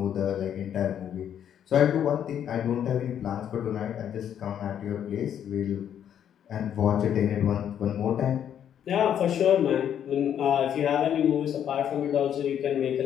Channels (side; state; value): right; quieter; 9.5 dB